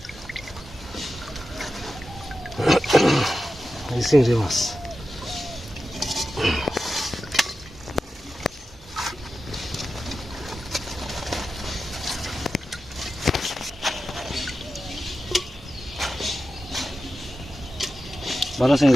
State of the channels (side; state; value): both; normal; correlation 0.92